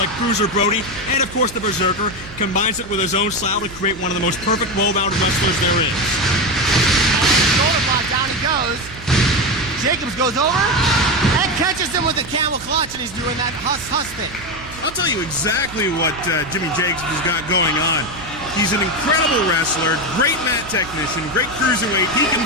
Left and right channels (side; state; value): right; noise; hum, 16 dB below the sound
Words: Bruiser Brody and, of course, the Berserker. Combines it with his own style to create one of the most perfect well-rounded wrestlers there is. Shoulder block, down he goes. Jacobs goes over and catches him with a camel clutch, and he's doing that huss thing. I'll tell you exactly what Jimmy Jacobs has got going on. He's an incredible wrestler, great mat technician, great cruiserweight, he can